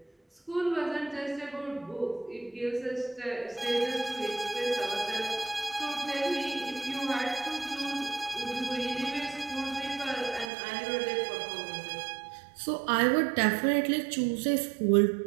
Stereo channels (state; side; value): drops out; left; at 10.5 s